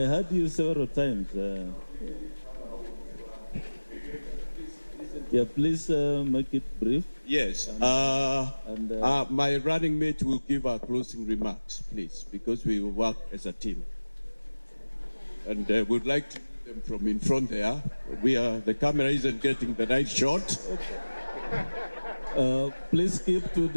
heard you several times. Yeah, please make it brief. Yes. My running mate will give our closing remarks, please, because we will work as a team. And we'd like to do them from in front there. The camera isn't getting the right shot. Please keep to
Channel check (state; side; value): inverted; both; correlation -1.00